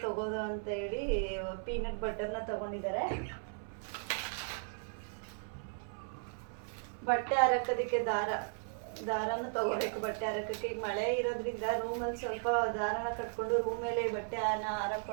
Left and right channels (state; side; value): silent; left; 54 dB below the other